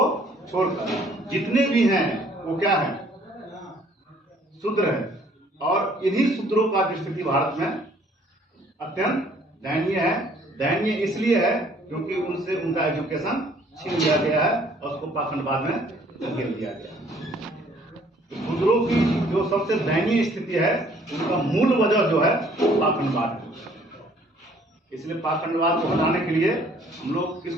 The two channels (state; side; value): normal; both; correlation 0.59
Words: छोड़कर जितने भी हैं वो क्या है, शूद्र है। और इन्हीं शूद्रों का स्थिति भारत में अत्यंत दयनीय है। दयनीय इसलिए है क्योंकि उनसे उनका एजुकेशन छीन लिया गया है और उसको पाखंडवाद में धकेल दिया गया। शूद्रों की जो सबसे दयनीय स्थिति है उनका मूल वजह जो है पाखंडवाद है। इसलिए पाखंडवाद को हटाने के लिए हम लोग